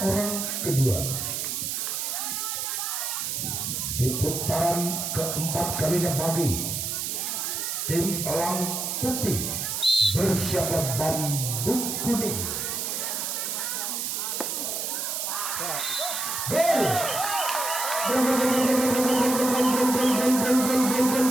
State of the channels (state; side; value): noise; right; hiss, 2 dB below the sound